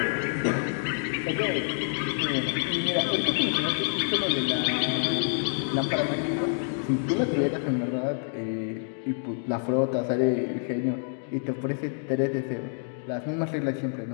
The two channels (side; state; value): right; silent; digital silence